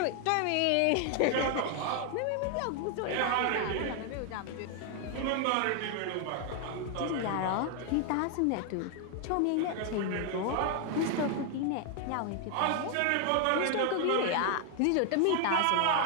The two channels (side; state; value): both; different; correlation 0.00